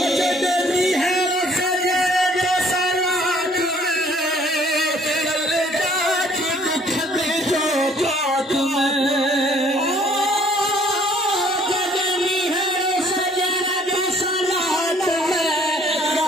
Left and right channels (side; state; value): both; normal; correlation 0.59